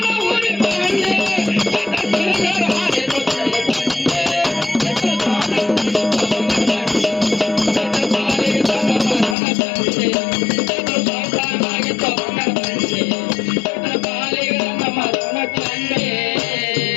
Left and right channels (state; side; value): drops out; right; at 9.3 s